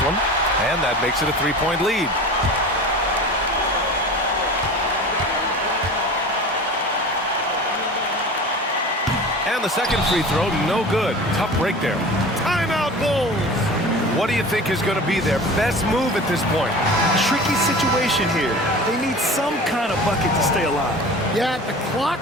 one, and that makes it a 3-point lead. And the second free throw, no good. Tough break there. Timeout, Bulls! What do you think is going to be their best move at this point? Tricky situation here. They need some kind of bucket to stay alive. Yeah, the clock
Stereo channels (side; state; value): both; normal; correlation 0.37